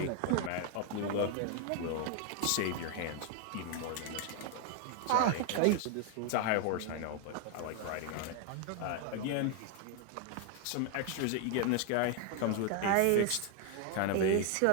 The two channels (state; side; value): different; both; correlation 0.00